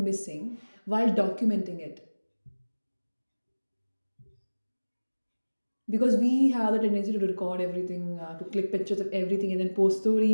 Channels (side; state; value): both; inverted; correlation -1.00